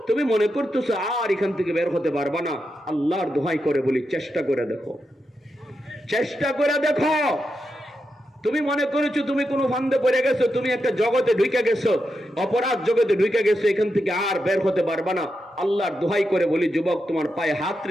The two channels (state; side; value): normal; both; correlation 0.86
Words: তুমি মনে করতেছো আর এখান থেকে বের হতে পারবা না, আল্লাহর দোহাই করে বলি চেষ্টা করে দেখো, চেষ্টা করে দেখো। তুমি মনে করেছো তুমি কোনো ফান্দে পড়ে গেছো, তুমি একটা জগতে ঢুকে গেছো, অপরাধ জগতে ঢুকে গেছো, এখান থেকে আর বের হতে পারবা না। আল্লাহর দোহাই করে বলি যুবক, তোমার পায়ে হাত